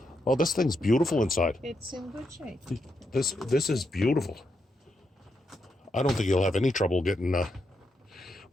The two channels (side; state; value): both; normal; correlation 0.82